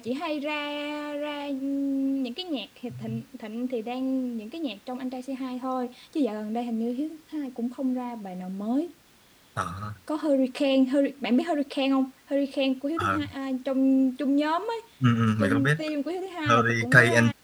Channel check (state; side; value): identical; both; correlation 1.00